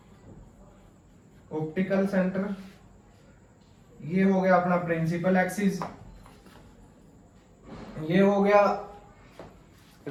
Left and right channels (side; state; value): both; identical; correlation 1.00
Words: ऑप्टिकल सेंटर। ये हो गया अपना प्रिंसिपल एक्सिस, ये हो गया